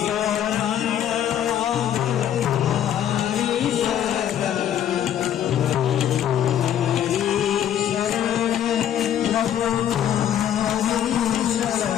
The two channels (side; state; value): right; quieter; 10.4 dB